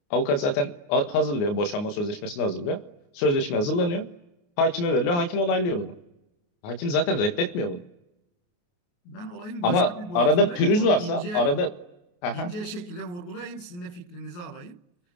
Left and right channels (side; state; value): right; late; 29 ms